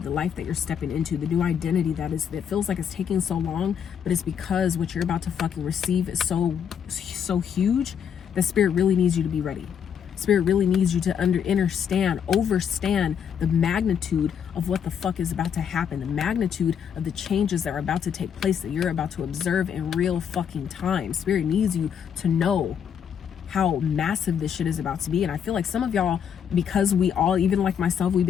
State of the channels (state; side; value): quieter; right; 8.0 dB